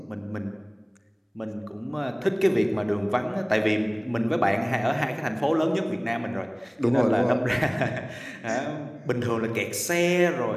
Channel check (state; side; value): identical; both; correlation 1.00